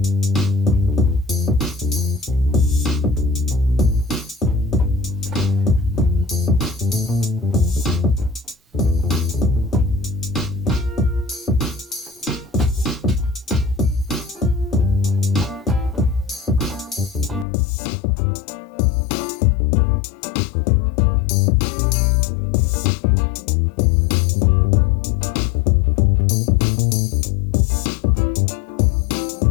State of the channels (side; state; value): right; drops out; at 17.4 s